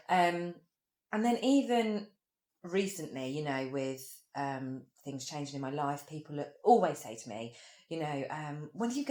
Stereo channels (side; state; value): both; identical; correlation 1.00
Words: And then even recently, with things changing in my life, people always say to me, when are